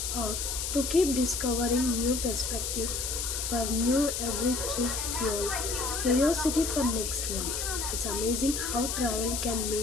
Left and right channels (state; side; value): noise; left; hiss, 2 dB below the sound